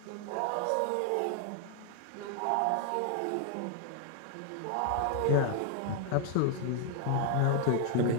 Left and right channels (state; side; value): different; both; correlation 0.00